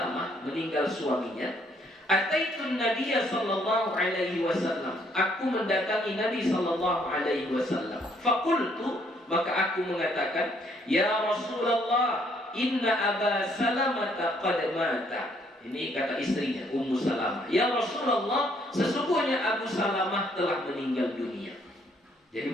meninggal suaminya, ataitun Nabiya sallallahu alaihi wasallam, aku mendatangi Nabi sallallahu alaihi wasallam. Faqultu, maka aku mengatakan, ya Rasulullah, inna Aba Salamah qad mata. Ini kata istrinya, Ummu Salamah. Ya Rasulullah, sesungguhnya Abu Salamah telah meninggal dunia. Jadi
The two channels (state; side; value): normal; both; correlation 0.67